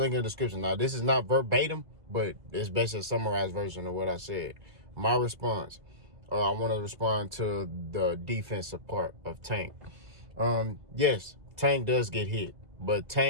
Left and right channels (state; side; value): late; left; 1.8 ms